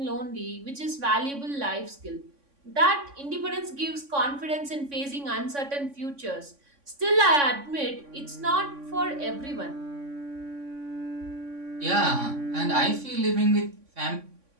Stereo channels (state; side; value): late; left; 3.6 ms